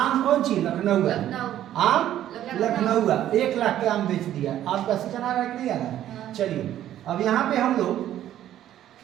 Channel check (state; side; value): quieter; left; 12.0 dB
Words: कौन चीज? लखनऊ है। आम लखनऊ है। 1 लाख के आम बेच दिया। आम का सीजन आ रहा है कि नहीं आ रहा है? चलिए अब यहाँ पे हम लोग